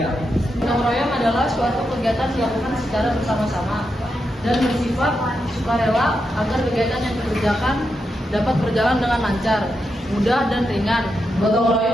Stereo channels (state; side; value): normal; both; correlation 0.85